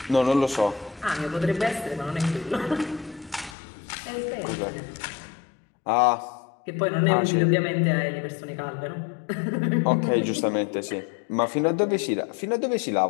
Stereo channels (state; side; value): drops out; right; at 3.6 s